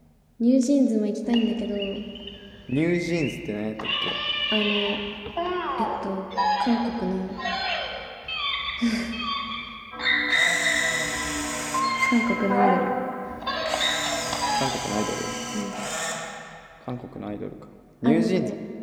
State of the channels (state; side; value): identical; both; correlation 1.00